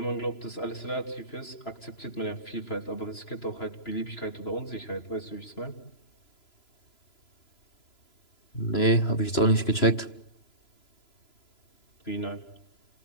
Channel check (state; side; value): late; right; 3.0 ms